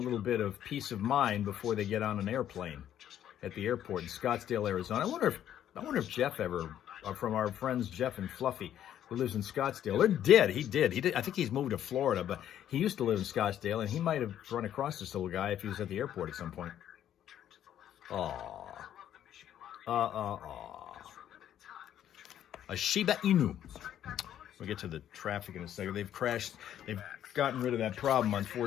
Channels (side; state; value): right; quieter; 10.8 dB